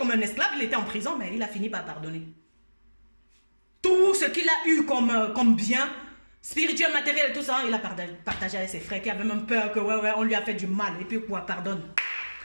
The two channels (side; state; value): both; inverted; correlation -1.00